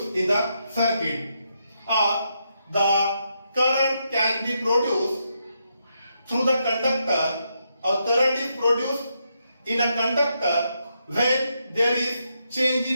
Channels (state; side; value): inverted; both; correlation -0.81